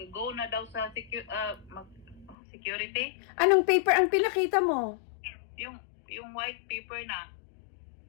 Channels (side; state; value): right; drops out; at 2.4 s